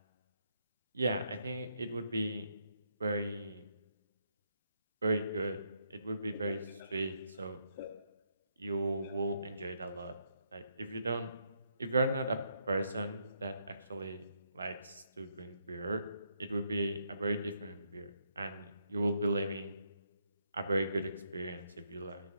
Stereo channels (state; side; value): inverted; both; correlation -0.77